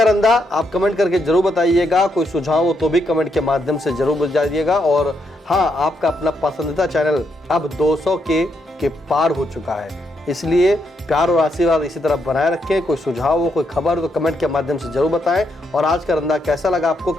रंदा, आप कमेंट करके जरूर बताइएगा। कोई सुझाव हो तो भी कमेंट के माध्यम से जरूर बताइएगा। और हाँ, आपका अपना पसंदीदा चैनल अब 200 के पार हो चुका है, इसलिए प्यार और आशीर्वाद इसी तरह बनाए रखें। कोई सुझाव हो, कोई खबर हो तो कमेंट के माध्यम से जरूर बताएं। और आज का रंदा कैसा लगा आपको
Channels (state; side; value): normal; both; correlation 0.78